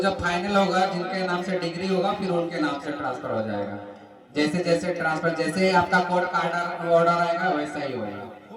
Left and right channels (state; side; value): identical; both; correlation 1.00